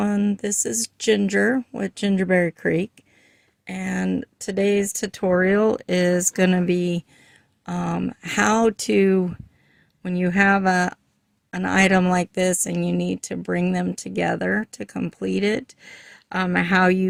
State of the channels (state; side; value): identical; both; correlation 1.00